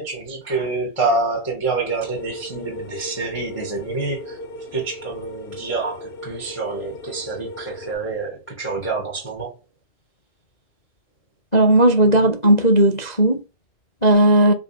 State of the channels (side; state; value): right; late; 2.0 ms